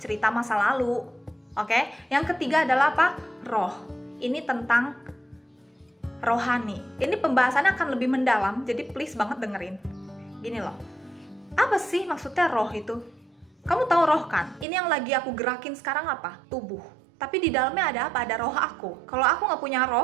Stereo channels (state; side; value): drops out; left; at 14.7 s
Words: masa lalu. Oke? Yang ketiga adalah apa? Roh. Ini tentang rohani. Ini pembahasannya akan lebih mendalam, jadi please banget dengerin. Gini loh, apa sih maksudnya roh itu? Kamu tahu roh kan? Ini yang lagi aku gerakin sekarang apa? Tubuh. tapi di dalamnya ada apa? Ada roh aku. Kalau aku nggak punya